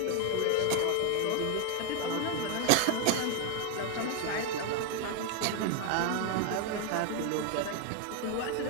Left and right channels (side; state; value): both; different; correlation 0.01